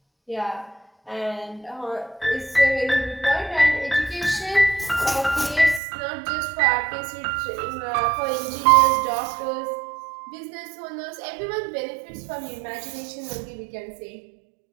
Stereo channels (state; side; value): drops out; left; at 5.8 s